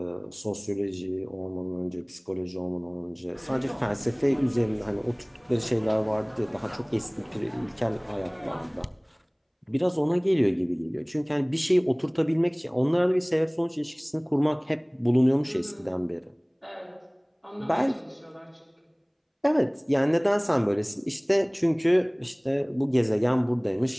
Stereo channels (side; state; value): both; identical; correlation 1.00